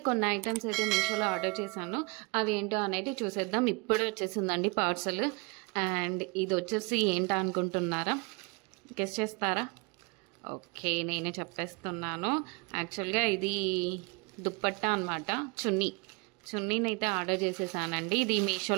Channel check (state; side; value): quieter; left; 29.5 dB